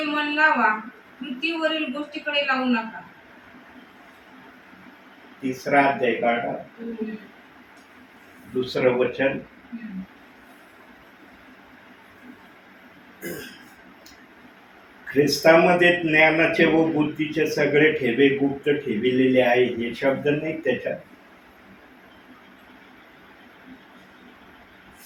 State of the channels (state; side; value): identical; both; correlation 1.00